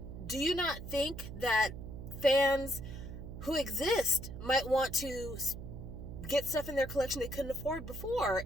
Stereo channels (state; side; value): noise; right; hum, 10 dB below the sound